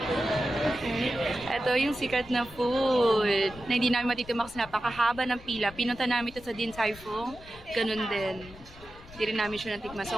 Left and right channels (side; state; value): left; noise; rumble, 19 dB below the sound